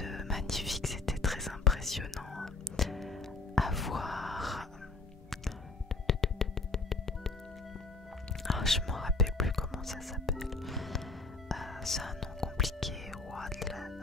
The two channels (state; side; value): quieter; right; 3.7 dB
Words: magnifique, c'était très impressionnant à voir. Je m'en rappelle plus comment ça s'appelle. C'est un nom compliqué. Je m'en rappelle